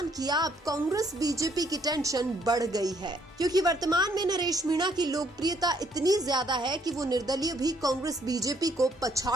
किया, अब कांग्रेस बीजेपी की टेंशन बढ़ गई है, क्योंकि वर्तमान में नरेश मीणा की लोकप्रियता इतनी ज्यादा है कि वो निर्दलीय भी कांग्रेस बीजेपी को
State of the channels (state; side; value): normal; both; correlation 0.67